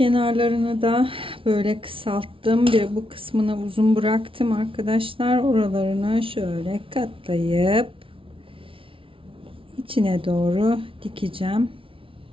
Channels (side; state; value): left; late; 0.25 ms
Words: da böyle kısalttım. Bir bu kısmını uzun bıraktım arkadaşlar. Oralarını şöyle katlayıp içine doğru dikeceğim.